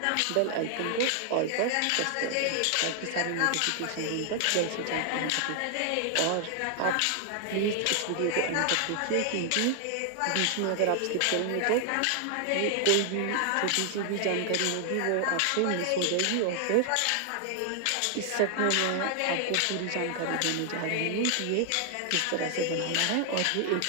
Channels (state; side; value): different; both; correlation 0.00